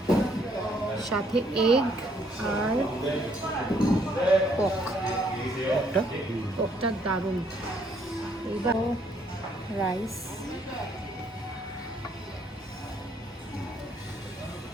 সাথে এগ আর পকটা দারুণ। এইবার rice,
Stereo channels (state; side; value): normal; both; correlation 0.68